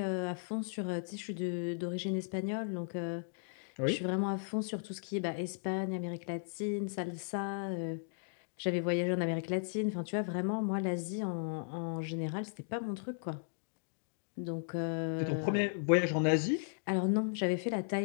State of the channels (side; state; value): right; silent; digital silence